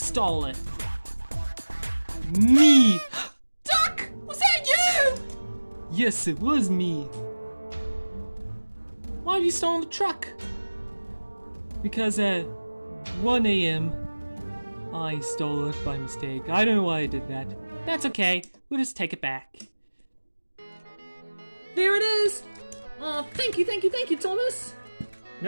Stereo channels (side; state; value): both; inverted; correlation -1.00